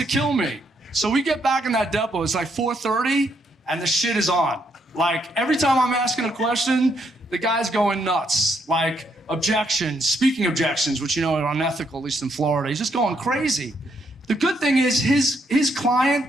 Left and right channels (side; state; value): both; normal; correlation 0.74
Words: kill me. So we get back in that depot, it's like 4:30, and the shit is on. Like, every time I'm asking a question, the guy's going nuts. Like, objections, speaking objections, which you know are unethical, at least in Florida. He's just going crazy. The good thing is his